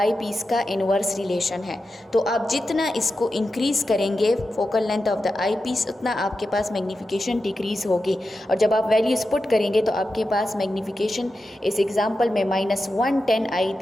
piece का इनवर्स रिलेशन है। तो आप जितना इसको इंक्रीज़ करेंगे focal length of the I piece, उतना आपके पास मैग्नीफिकेशन डिक्रीज़ होगी। और जब आप वैल्यूज़ पुट करेंगे तो आपके पास मैग्नीफिकेशन इस एग्जांपल में -110 आई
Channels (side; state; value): both; normal; correlation 0.91